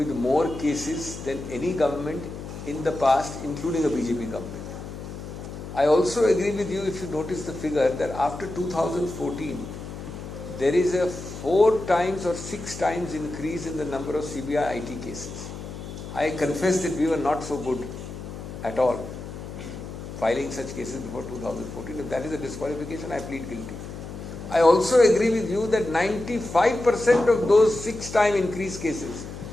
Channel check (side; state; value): left; noise; hum, 10 dB below the sound